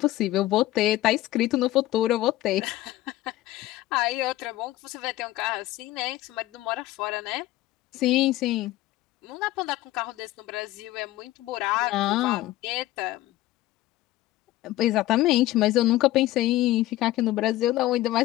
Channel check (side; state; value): right; quieter; 16.1 dB